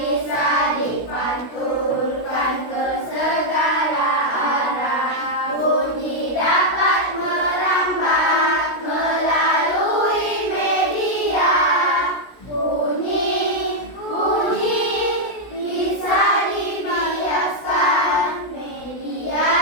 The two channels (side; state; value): right; late; 16 ms